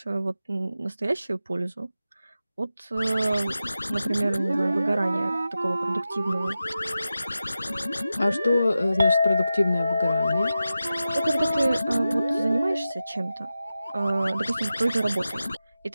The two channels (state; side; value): inverted; both; correlation -0.92